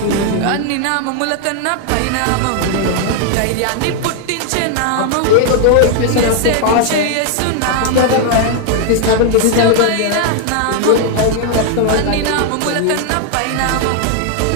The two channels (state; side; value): different; both; correlation 0.00